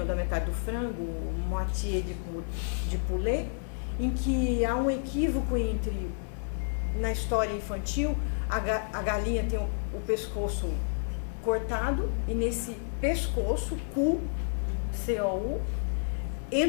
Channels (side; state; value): right; silent; digital silence